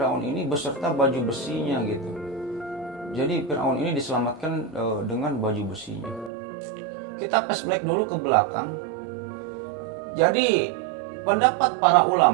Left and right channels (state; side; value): drops out; left; at 6.3 s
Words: ini beserta baju besinya gitu. Jadi Firaun ini diselamatkan dengan baju besinya. Kita flashback dulu ke belakang. Jadi pendapat para